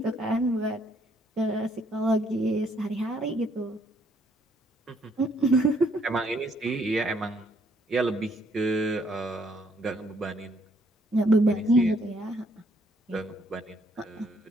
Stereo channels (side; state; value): both; normal; correlation 0.68